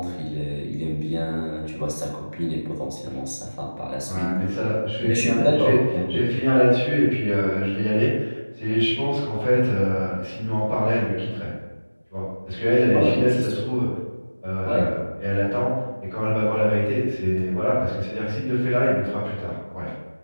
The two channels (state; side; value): inverted; both; correlation -1.00